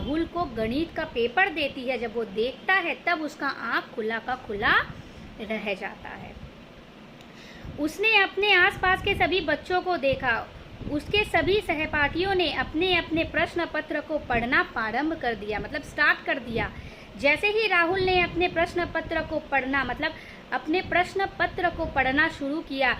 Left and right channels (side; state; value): both; identical; correlation 1.00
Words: को गणित का पेपर देती है, जब वो देखता है, तब उसका आँख खुला का खुला रह जाता है। उसने अपने आसपास के सभी बच्चों को देखा। उसके सभी सहपाठियों ने अपने अपने प्रश्न पत्र को पढ़ना प्रारंभ कर दिया, मतलब स्टार्ट कर दिया। जैसे ही राहुल ने अपने प्रश्न पत्र को पढ़ना, मतलब अपने प्रश्न पत्र को पढ़ना शुरू किया,